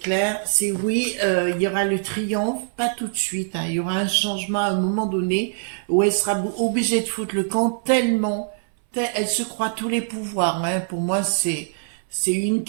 C'est oui, il y aura le triomphe, pas tout de suite. Il y aura un changement à un moment donné où elle sera obligée de foutre le camp tellement, elle se croit tous les pouvoirs. Pour moi, c'est une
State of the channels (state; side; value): silent; left; 61 dB below the other